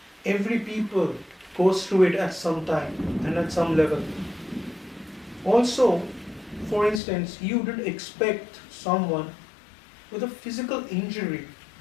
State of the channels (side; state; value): right; drops out; at 7.0 s